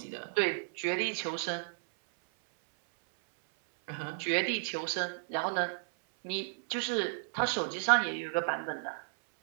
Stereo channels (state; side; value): silent; left; 56 dB below the other